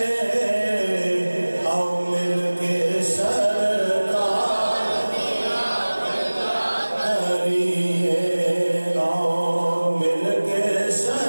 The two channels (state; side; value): inverted; both; correlation -1.00